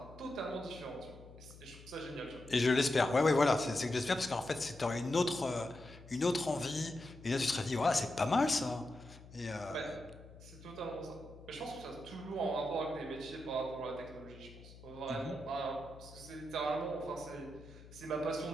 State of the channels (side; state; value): left; noise; hum, 18 dB below the sound